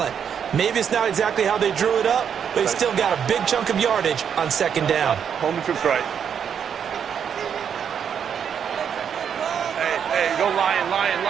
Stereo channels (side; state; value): left; quieter; 7.8 dB